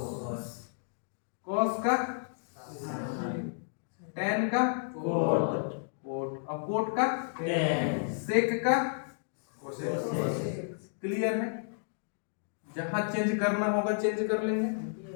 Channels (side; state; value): right; silent; digital silence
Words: कॉस का tan का कोट, और कोट का सेक का कोसेक। क्लियर है? जहां चेंज करना होगा चेंज कर लेंगे,